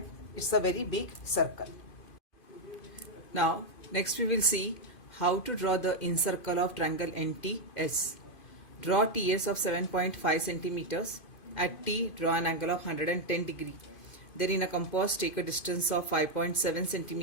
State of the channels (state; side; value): late; right; 2.5 ms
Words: it's a very big circle. Now next we will see how to draw the incircle of triangle NTS. Draw TS of 7.5 centimeters. At T draw an angle of 110 degree. Then in a compass take a distance of 5.7